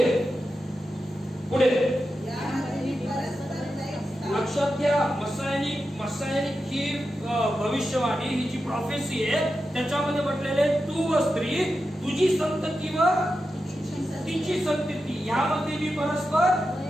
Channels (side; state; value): both; normal; correlation 0.90